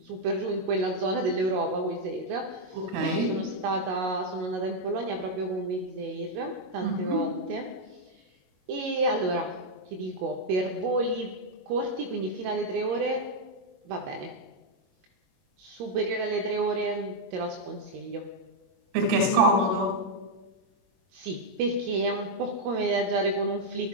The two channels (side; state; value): left; late; 22 ms